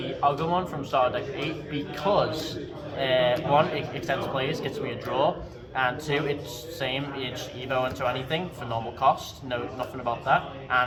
Agumon from Starter Deck 8 because 1, it extends plays, gets me a draw, and 2, it's same, it's Evo into anything for normal cost, nothing about that,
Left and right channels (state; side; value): identical; both; correlation 1.00